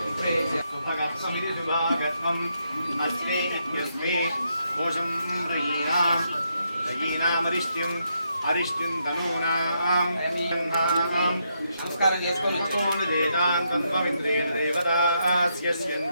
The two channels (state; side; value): inverted; both; correlation -0.79